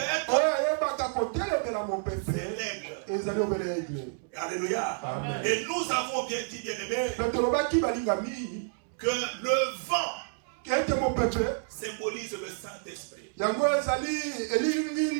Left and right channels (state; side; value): silent; left; 58 dB below the other